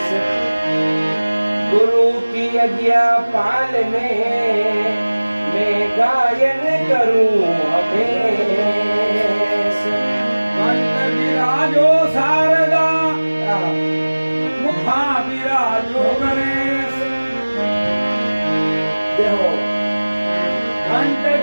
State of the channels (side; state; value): both; inverted; correlation -1.00